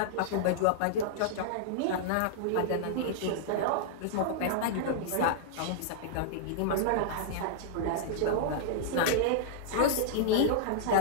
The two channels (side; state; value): both; different; correlation -0.02